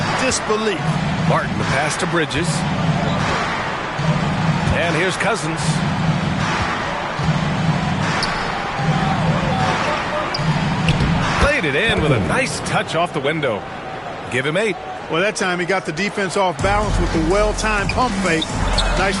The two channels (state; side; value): identical; both; correlation 1.00